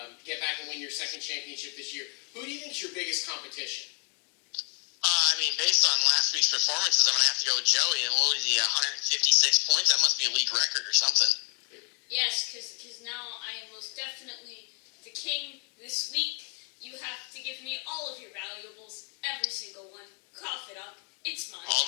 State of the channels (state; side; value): quieter; right; 38.1 dB